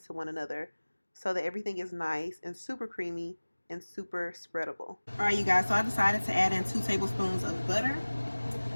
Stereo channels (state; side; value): inverted; both; correlation -1.00